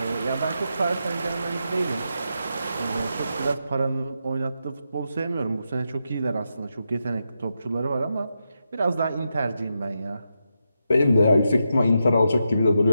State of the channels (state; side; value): inverted; both; correlation -0.85